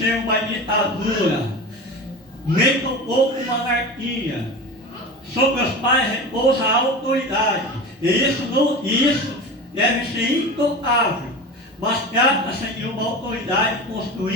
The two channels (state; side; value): normal; both; correlation 0.30